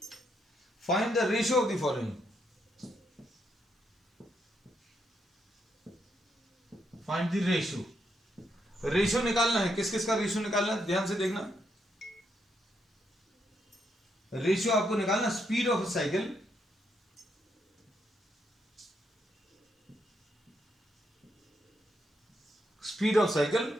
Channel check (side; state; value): both; normal; correlation 0.78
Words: find the ratio of the following. Find the ratio. Ratio निकालना है. किस किस का रेशियो निकालना है, ध्यान से देखना. रेशियो आपको निकालना speed of cycle